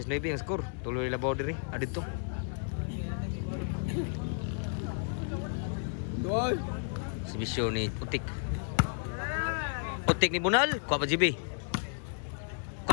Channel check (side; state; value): right; silent; 56 dB below the other